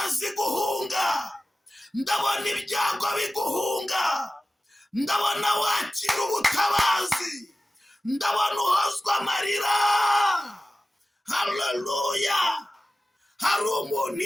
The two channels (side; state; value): both; normal; correlation 0.95